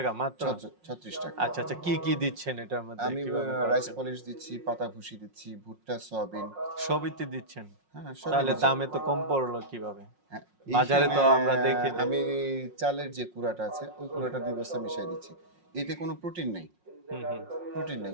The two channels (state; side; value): late; left; 5.5 ms